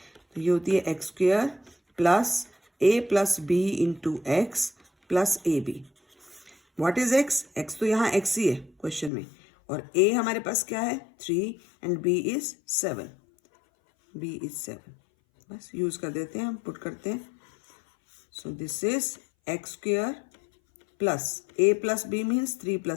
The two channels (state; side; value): drops out; right; at 9.1 s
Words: तो ये होती है x square plus a plus b into X plus A B. What is x? x तो यहाँ x ही है क्वेश्चन में, और a हमारे पास क्या है? 3 and b is 7, b is 7। बस यूज कर देते हैं, हम पुट करते हैं। So this is x square plus a plus b means 3